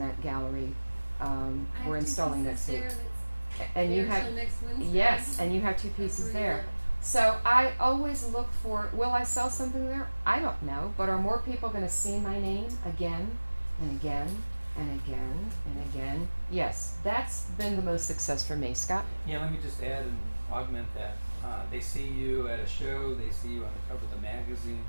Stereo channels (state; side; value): inverted; both; correlation -1.00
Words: gallery. We're installing next week. And you have next Wednesday. yes, and you have 2 pieces there. So I always look for, will I sell something there? I don't know, but are more people going to see my name again and again and again and again? Yes, that's been the most success for me. Scott? Yeah, let me just add and augment that. They see you at a show, they see you on the cover of the magazine,